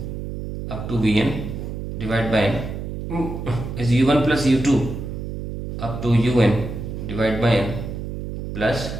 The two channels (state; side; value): noise; right; hum, 6 dB below the sound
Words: up to vn divide by n is u1 plus u2 up to un divide by n plus